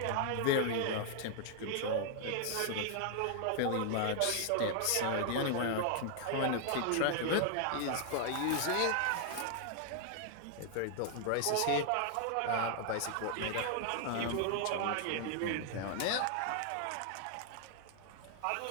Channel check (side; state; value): both; different; correlation 0.00